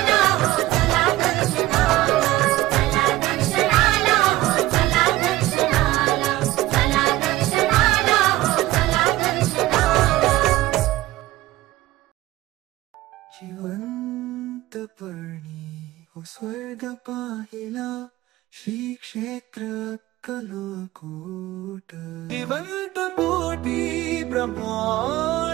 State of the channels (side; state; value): left; quieter; 16.8 dB